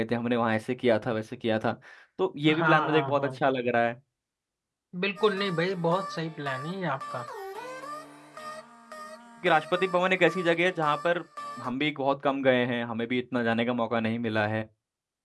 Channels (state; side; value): identical; both; correlation 1.00